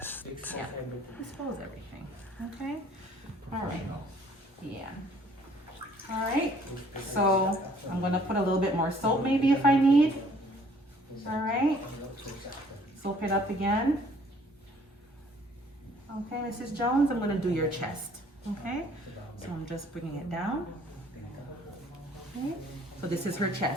Yeah. Dispose everything. Okay. All right. Yeah. All right. So I'm gonna put a little bit more soap maybe if I need. All right. Soap it up again. Okay, Mrs. Jones, I'm gonna do your chest. Okay. So I'm just bringing it down. Okay. So this is her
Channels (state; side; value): normal; both; correlation 0.59